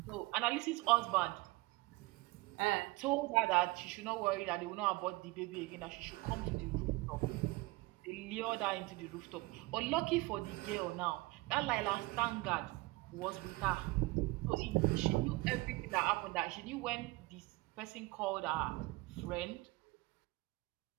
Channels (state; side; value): quieter; left; 22.5 dB